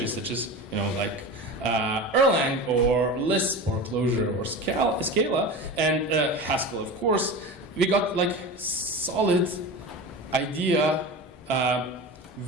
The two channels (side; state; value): both; normal; correlation 0.29